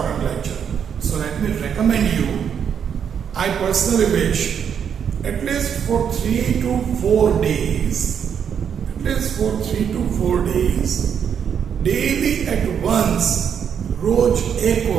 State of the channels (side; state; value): left; quieter; 7.8 dB